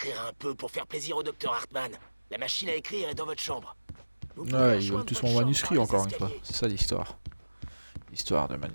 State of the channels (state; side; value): inverted; both; correlation -1.00